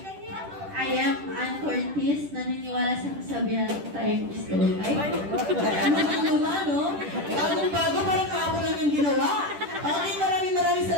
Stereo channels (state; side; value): late; left; 10 ms